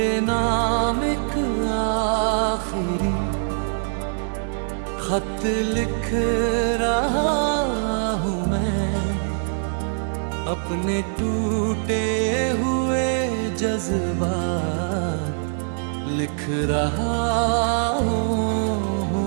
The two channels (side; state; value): left; silent; digital silence